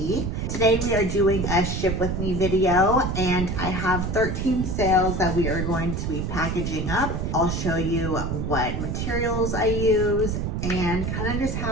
Today we are doing a ship with me video and I have 13 sales that we are going to be packaging up. I'll show you what materials I use and kind of just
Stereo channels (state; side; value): noise; right; rumble, 2 dB below the sound